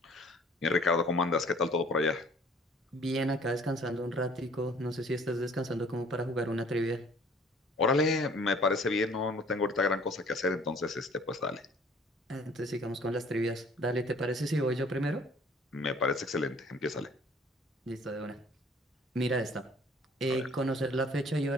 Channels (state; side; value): normal; both; correlation 0.54